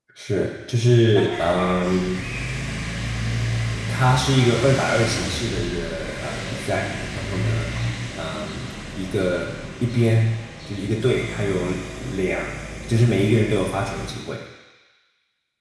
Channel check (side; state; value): both; identical; correlation 1.00